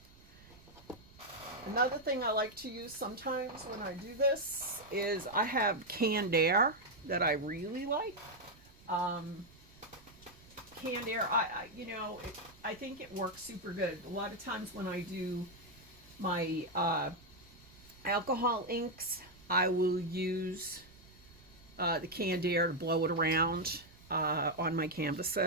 Another thing I like to use sometimes when I do this is I have canned air that I really like. Canned air, I think it works super good. A lot of times when I do my alcohol inks, I will use the canned air to blow it around on my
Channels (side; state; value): right; noise; rumble, 24 dB below the sound